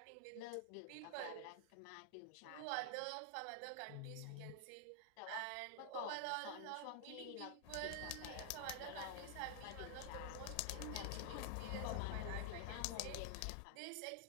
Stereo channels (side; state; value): both; different; correlation 0.00